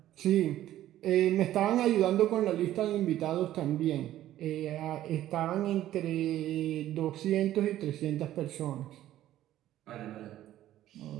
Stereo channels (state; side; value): quieter; left; 13.3 dB